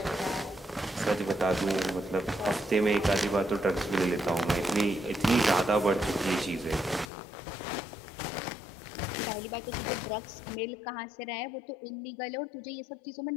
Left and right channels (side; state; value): right; drops out; at 7.1 s